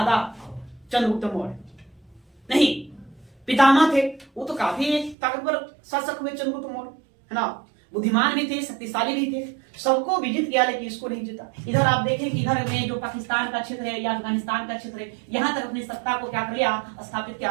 चंद्रगुप्त मौर्य नहीं पितामह थे, वो तो काफी ताकतवर शासक हुए चंद्रगुप्त मौर्य, है ना, बुद्धिमान भी थे, शक्तिशाली भी थे, सबको विजित किया, लेकिन इसको नहीं जीता। इधर आप देखें कि इधर में जो पाकिस्तान का क्षेत्र है या अफगानिस्तान का क्षेत्र है, यहां तक अपनी सत्ता को क्या कर लिया? स्थापित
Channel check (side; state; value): left; drops out; at 5.2 s